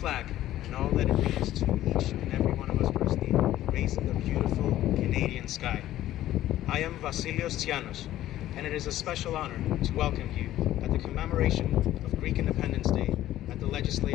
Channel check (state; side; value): quieter; right; 13.7 dB